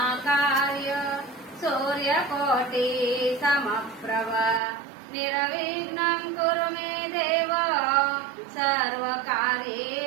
సూర్యకోటి సమప్రభ నిర్విఘ్నం కురు మే దేవ సర్వకార్యేషు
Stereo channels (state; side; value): drops out; left; at 4.6 s